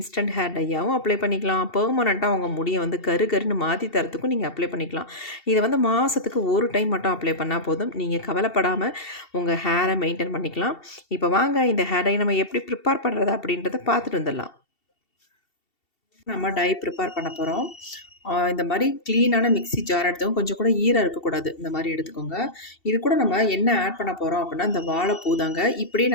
ஹேர் டையாவும் அப்ளை பண்ணிக்கலாம். பெர்மனன்ட்டா உங்க முடிய வந்து கரு கருன்னு மாத்தி தரத்துக்கும் நீங்க அப்ளை பண்ணிக்கலாம். இத வந்து மாசத்துக்கு 1 டைம் மட்டும் அப்ளை பண்ணா போதும். நீங்க கவலைப்படாம உங்க ஹேரை மெயின்டெயின் பண்ணிக்கலாம். இப்போ வாங்க இந்த ஹேர் டை நம்ம எப்படி ப்ரிப்பேர் பண்ணுறது அப்படின்றத பார்த்துட்டு வந்துடலாம். நம்ம டை ப்ரிப்பேர் பண்ண போகிறோம். இந்த மாதிரி க்ளீனான மிக்ஸி ஜார் எடுத்துக்கோங்க. கொஞ்சம் கூட ஈரம் இருக்கக்கூடாது. இந்த மாதிரி எடுத்துக்கோங்க. இது கூட நம்ம என்ன ஆட் பண்ண போகிறோம் அப்படின்னா, இந்த வாழைப்பூ தாங்க. இப்படியே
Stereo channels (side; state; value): right; late; 2.7 ms